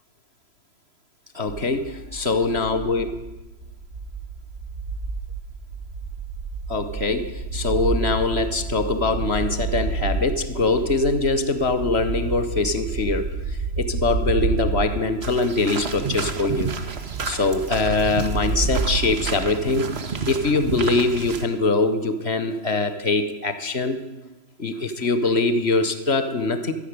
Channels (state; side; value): late; left; 3.0 ms